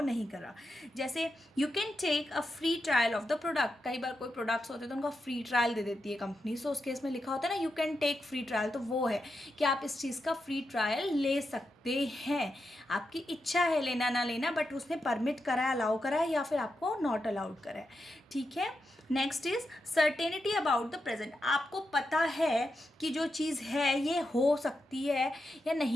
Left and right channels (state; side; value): normal; both; correlation 0.87